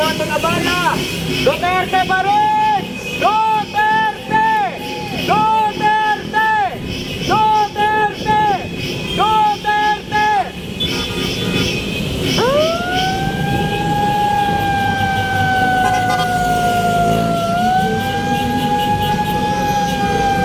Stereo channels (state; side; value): identical; both; correlation 1.00